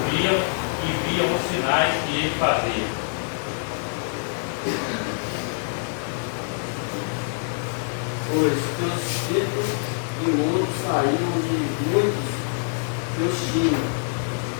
e viam os sinais que ele fazia. Pois que os espíritos imundos saíam de muitos que os tinham,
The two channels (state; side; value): silent; right; 62 dB below the other